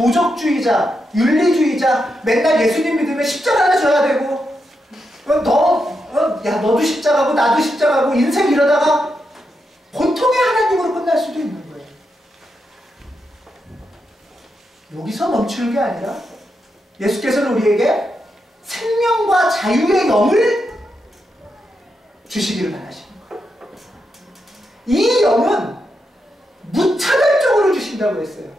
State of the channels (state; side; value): normal; both; correlation 0.84